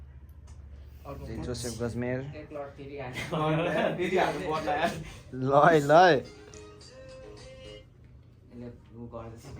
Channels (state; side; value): identical; both; correlation 1.00